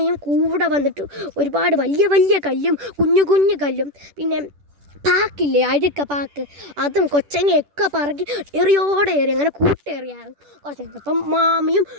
കൂടെ വന്നിട്ട് ഒരുപാട് വലിയ വലിയ കല്ലും കുഞ്ഞു കുഞ്ഞു കല്ലും പിന്നെ പാക്കില്ലേ, അഴുക്ക പാക്ക്, അതും കൊച്ചങ്ങയൊക്കെ പറക്കി എറിയോടെ എറി, അങ്ങനെ കൂട്ടേറിയായിരുന്നു. കുറച്ച് കഴിഞ്ഞപ്പം മാമിയും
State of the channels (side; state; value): left; late; 10 ms